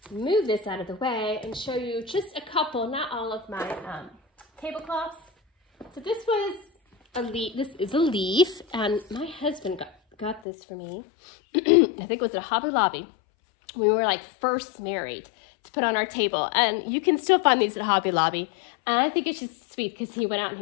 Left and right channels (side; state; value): right; drops out; at 10.4 s